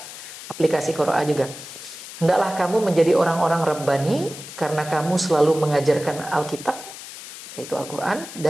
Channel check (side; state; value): left; noise; hiss, 13 dB below the sound